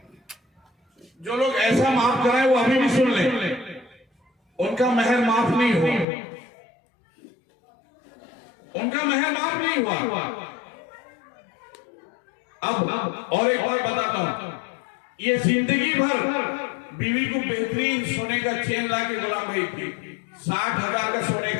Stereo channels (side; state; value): right; drops out; at 6.1 s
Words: जो लोग ऐसा माफ कराए वो अभी भी सुन ले, उनका महर माफ नहीं हुआ, उनका महर माफ नहीं हुआ। अब और एक बात बताता हूं, ये जिंदगी भर बीवी को बेहतरीन सोने का चेन ला के गुलाम भाई की, 60,000 का सोने